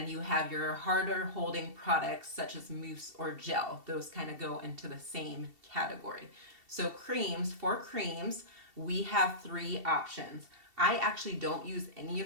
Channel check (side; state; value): left; late; 2.7 ms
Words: you have your harder holding products such as mousse or gel. Those kind of go into the same category. So for creams, we have three options. I actually don't use any